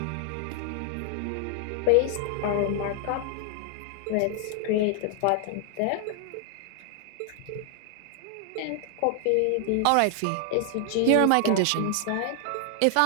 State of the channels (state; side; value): different; both; correlation 0.00